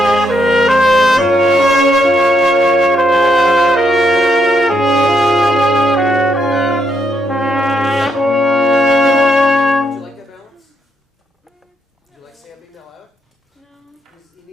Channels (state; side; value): normal; both; correlation 0.77